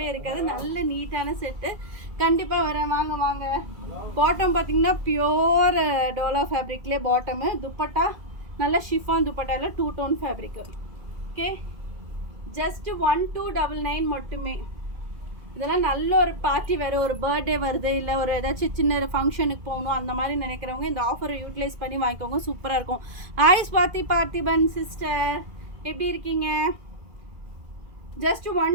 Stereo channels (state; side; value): late; left; 2.1 ms